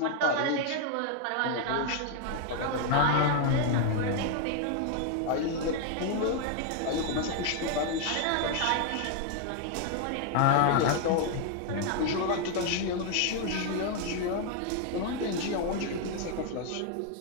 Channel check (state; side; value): different; both; correlation 0.00